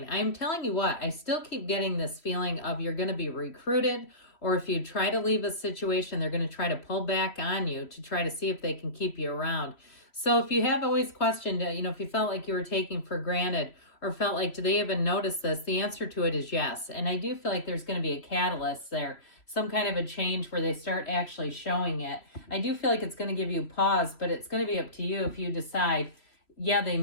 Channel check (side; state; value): right; late; 3.0 ms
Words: I'm telling you what, I still keep getting this feeling of you're going to be recruited, or if you try to leave a situation, they're going to try to pull back on you to try to see if they can keep you around. So if you have always questioned, if you felt like you were taking for granted or felt like, do they even notice this? The answer to it is yes. And I do feel like there's going to be a catalyst there, some kind of a change where they start actually showing it. I do feel like it's going to give you pause, but it's going to be up to you if you decide, yeah, they